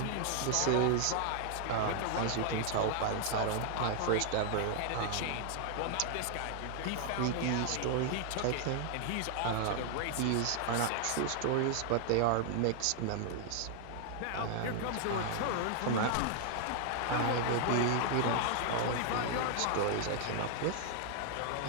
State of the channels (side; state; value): both; different; correlation 0.00